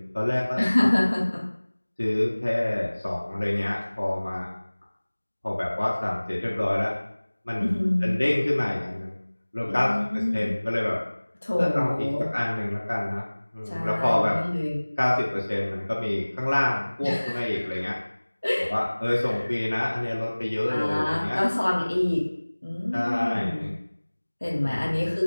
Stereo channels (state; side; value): inverted; both; correlation -1.00